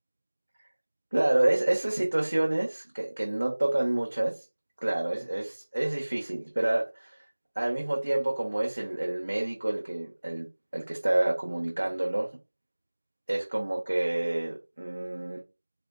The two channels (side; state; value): both; inverted; correlation -1.00